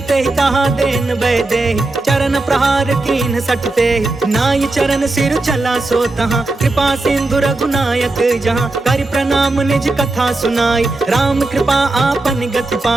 ते कहा देन बै दे, चरण प्रहार कीन सटते, नाई चरण सिर चला सो तहाँ, कृपा सिंधु रघुनायक जहाँ, कर प्रणाम निज कथा सुनाई, राम कृपा आपन गति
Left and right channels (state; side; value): quieter; left; 3.1 dB